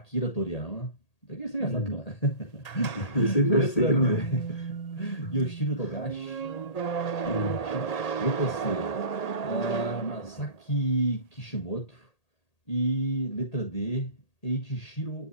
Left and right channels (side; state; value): right; late; 1.8 ms